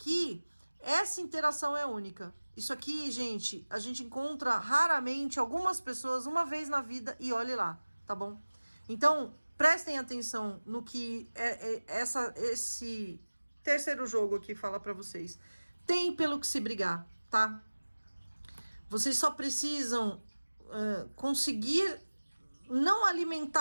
essa interação é única. Isso aqui, gente, a gente encontra raramente algumas pessoas uma vez na vida e olhe lá, tá bom? Então, prestem atenção no que esse terceiro jogo aqui fala pra vocês. Tem pelo que se brigar, tá? Vocês só precisam conseguir não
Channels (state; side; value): inverted; both; correlation -1.00